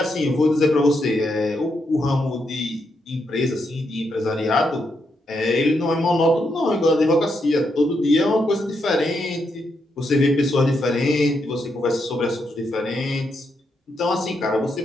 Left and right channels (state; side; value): normal; both; correlation 0.81